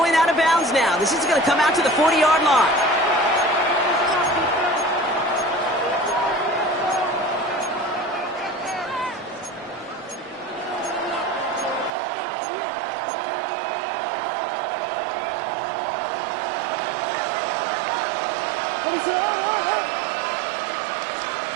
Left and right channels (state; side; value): drops out; left; at 11.9 s